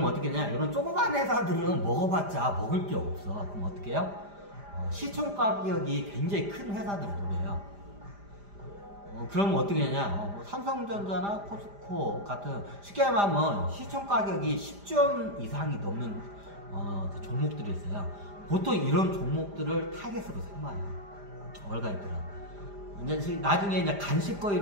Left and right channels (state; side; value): late; left; 5.0 ms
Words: 어떻게 하냐, 이런 조그만 회사들은 먹어봤자 먹을 게 없어. 그럼 어떻게 해요? 시총 가격이 굉장히 큰 회사들을 노려요. 그러면 어떻게 하냐, 삼성전자나 포스코 같은 쉽게 말하면 시총 가격이 10조 이상이 넘는 그 종목들이 있어요. 보통 이런 종목들을 타겟으로 삼아요, 월가애들은. 이제 나중에 이제